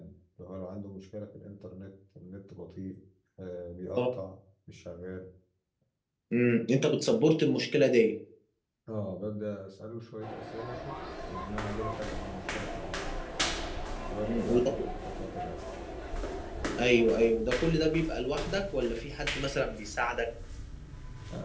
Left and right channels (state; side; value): identical; both; correlation 1.00